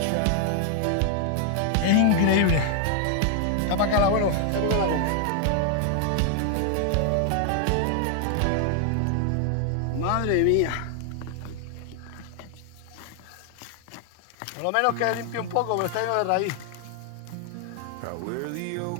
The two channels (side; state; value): both; different; correlation 0.00